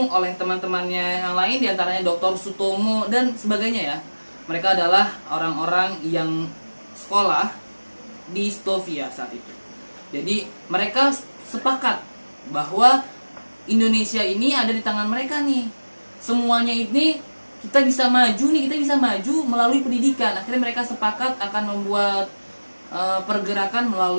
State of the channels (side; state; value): both; inverted; correlation -1.00